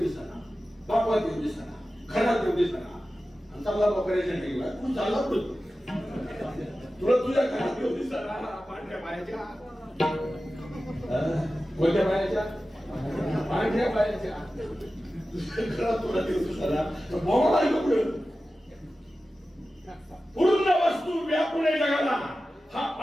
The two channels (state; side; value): normal; both; correlation 0.94